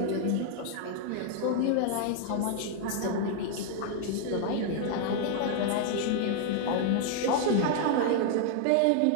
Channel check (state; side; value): different; both; correlation 0.00